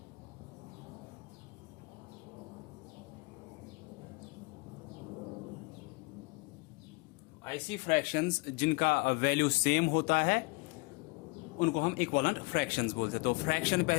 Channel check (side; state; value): right; quieter; 26.7 dB